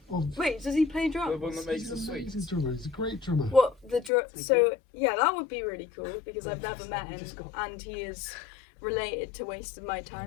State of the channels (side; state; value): right; drops out; at 4.1 s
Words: Oh, Wait, does he play drums? The one that makes he's the an sweets. amazing drummer. He's a great drummer. What the Is so he? yeah, that would be really cool because I've never met He him, just got- and he is related to Wasting My